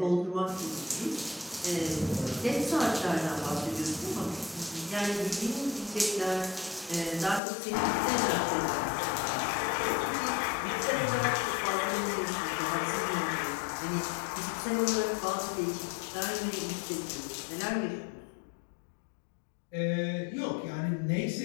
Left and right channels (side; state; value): right; drops out; at 7.4 s